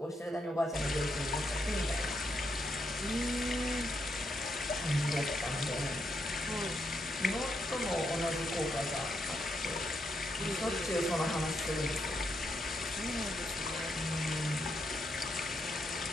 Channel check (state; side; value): normal; both; correlation 0.80